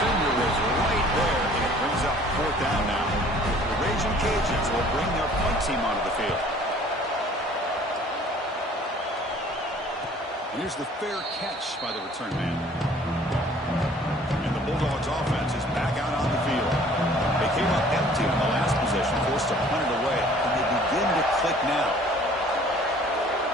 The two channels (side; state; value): both; normal; correlation 0.53